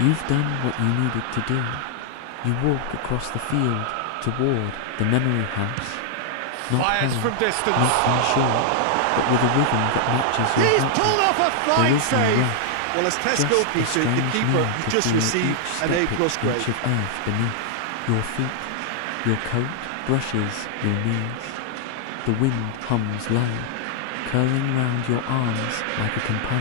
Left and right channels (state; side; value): different; both; correlation 0.00